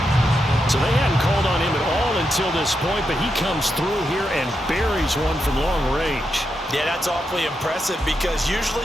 So they hadn't called on him at all until this point, but he comes through here and buries one from long range. Yeah, that's awfully impressive because usually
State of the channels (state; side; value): normal; both; correlation 0.84